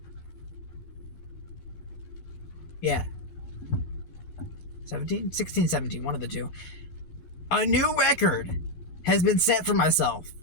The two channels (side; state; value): right; late; 12 ms